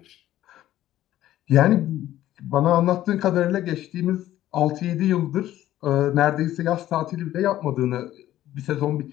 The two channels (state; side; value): quieter; right; 13.5 dB